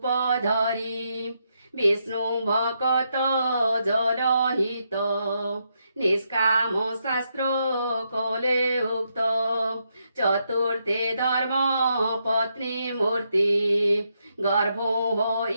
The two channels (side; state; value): both; inverted; correlation -0.80